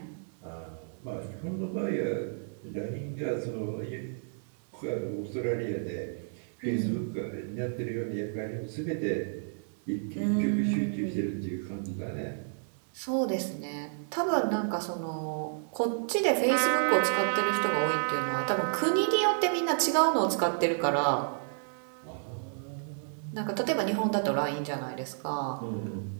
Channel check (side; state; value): left; silent; digital silence